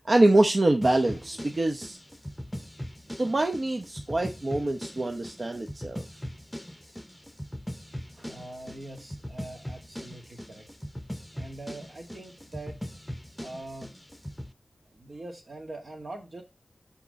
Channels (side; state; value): both; normal; correlation 0.98